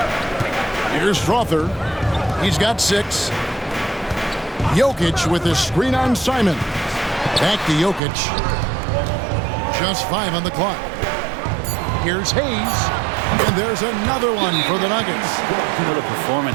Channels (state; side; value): drops out; left; at 8.0 s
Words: Here's Strawther. He's got 6. Jokic with a screen on Simon. Back to Jokic. Just 5 on the clock. Here's Hayes. And there's another one for the Nuggets. What a